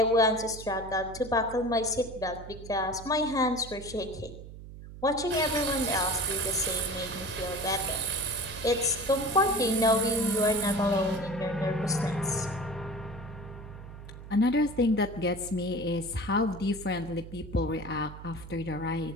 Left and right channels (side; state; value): right; noise; hum, 14 dB below the sound